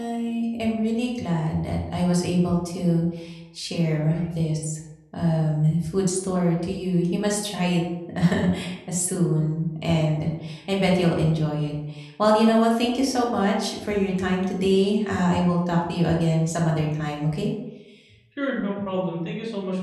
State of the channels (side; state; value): both; identical; correlation 1.00